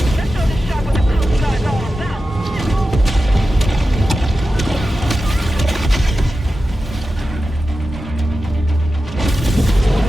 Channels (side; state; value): both; normal; correlation 0.92